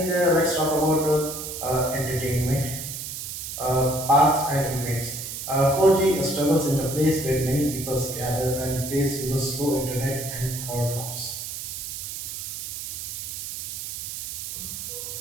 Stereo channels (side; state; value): right; noise; hiss, 7 dB below the sound